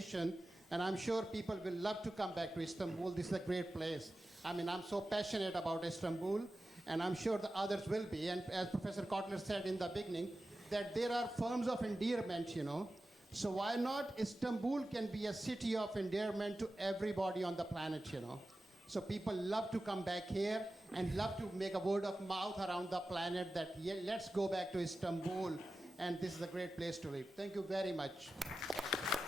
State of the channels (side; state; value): both; normal; correlation 0.94